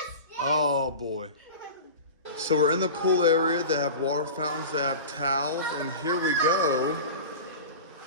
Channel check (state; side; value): inverted; both; correlation -0.32